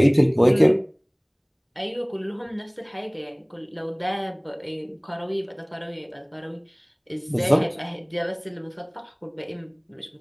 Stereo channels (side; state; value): both; identical; correlation 1.00